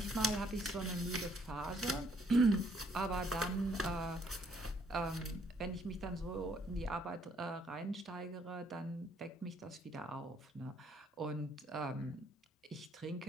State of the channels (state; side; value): normal; both; correlation 0.67